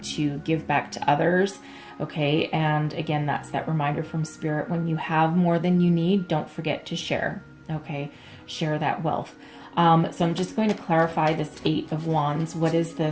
to give back to others, okay? And again, that's that reminder from Spirit. When you have more than you need, don't forget to share, okay? Share that wealth. So I'm just going to clarify this Eight of Wands. What is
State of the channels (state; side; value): identical; both; correlation 1.00